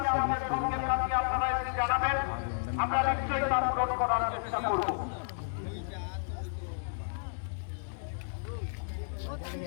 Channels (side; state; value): right; silent; digital silence